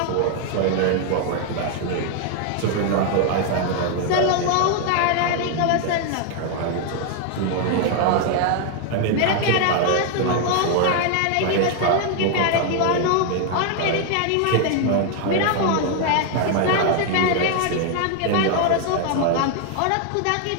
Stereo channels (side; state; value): both; different; correlation 0.00